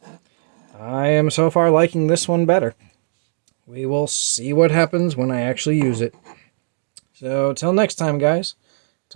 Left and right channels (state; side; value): silent; left; digital silence